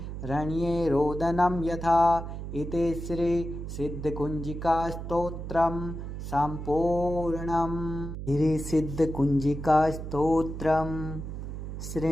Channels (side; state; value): right; noise; hum, 7 dB below the sound